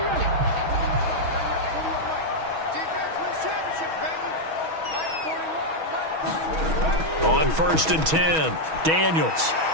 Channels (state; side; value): late; left; 6.2 ms